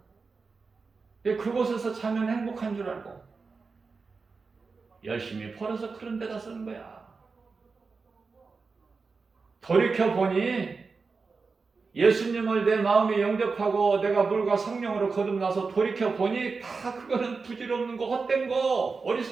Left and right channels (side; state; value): left; quieter; 4.5 dB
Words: 그곳에서 자면 행복한 줄 알고 열심히 벌어서 그런 데다 쓰는 거야. 돌이켜보니 예수님을 내 마음에 영접하고 내가 물과 성령으로 거듭나서 돌이켜보니 다 그거는 부질없는 거, 헛된 거,